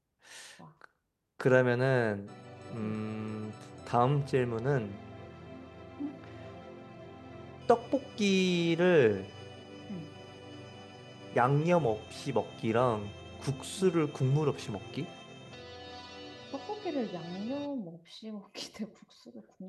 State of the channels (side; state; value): both; identical; correlation 1.00